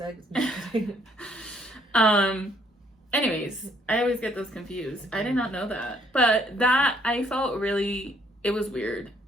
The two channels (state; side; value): normal; both; correlation 0.66